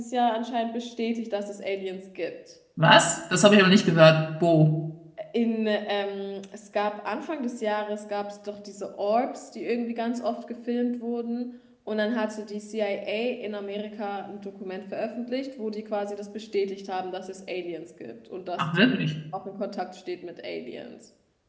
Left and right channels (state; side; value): identical; both; correlation 1.00